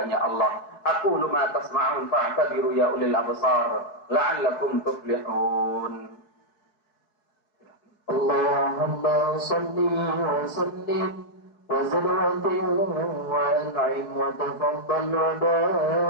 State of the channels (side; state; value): right; late; 4.8 ms